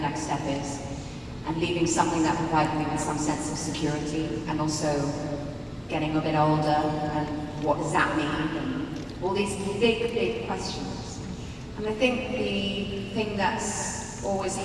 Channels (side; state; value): both; identical; correlation 1.00